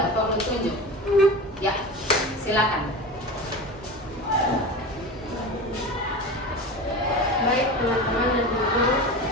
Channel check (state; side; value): normal; both; correlation 0.29